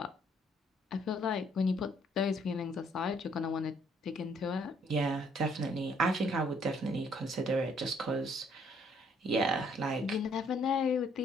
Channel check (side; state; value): both; normal; correlation 0.65